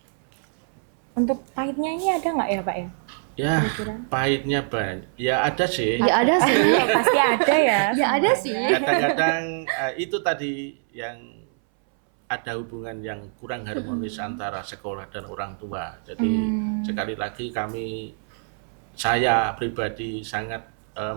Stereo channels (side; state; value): left; silent; 62 dB below the other